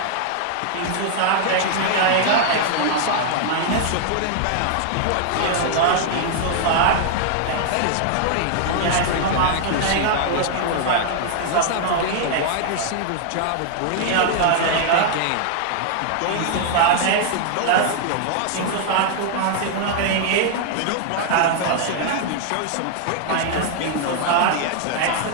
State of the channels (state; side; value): different; both; correlation 0.00